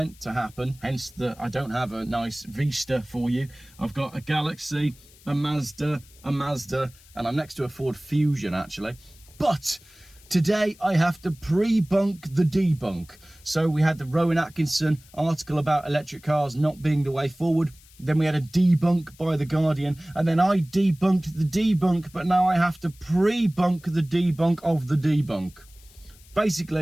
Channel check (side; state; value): left; noise; hiss, 25 dB below the sound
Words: to happen, hence that I don't have a nice Vista for you. I've got a Galaxy, a Mazda, and I'm next to a Ford Fusion, actually. But today I have to pre-bunk the debunk. So we had the Rowan Atkinson article about electric cars not being the way forward. Then we had a debunk by The Guardian, and then I debunked the debunk, but now I have to pre-bunk the debunk of the debunk.